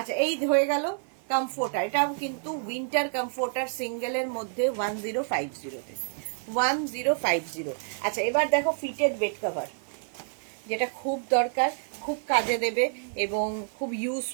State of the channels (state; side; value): silent; left; 55 dB below the other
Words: এই হয়ে গেল কমফোর্টার, এটাও কিন্তু উইন্টার কমফোর্টার সিঙ্গেলের মধ্যে 1050-তে, 1050। আচ্ছা, এবার দেখো ফিটেড বেড কভার, যেটা খুব দরকার, খুব কাজে দেবে এবং খুব